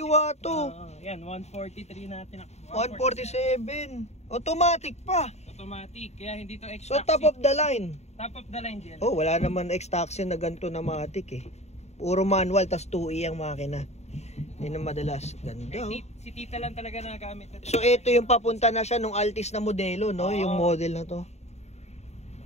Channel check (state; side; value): late; right; 0.32 ms